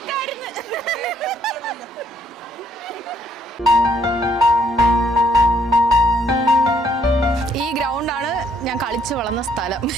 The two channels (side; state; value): both; normal; correlation 0.67